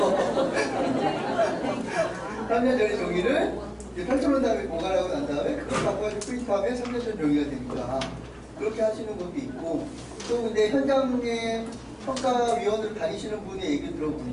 3년 전의 종이를 이제 펼쳐놓은 다음에 보관하고 난 다음에 그걸 바꿔가지고 프린트하면 3년 전 종이가 되니까 그렇게 하시는 것도 있고, 또 근데 현장에 평가위원으로 다니시는 분의 얘기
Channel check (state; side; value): identical; both; correlation 1.00